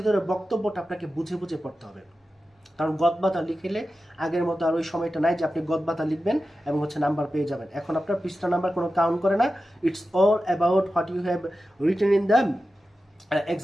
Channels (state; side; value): normal; both; correlation 0.93